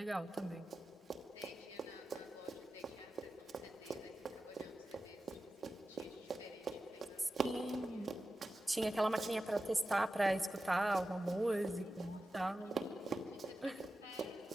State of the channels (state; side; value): normal; both; correlation 0.93